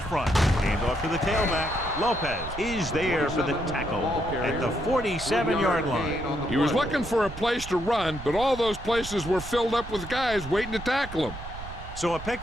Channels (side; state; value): right; noise; rumble, 11 dB below the sound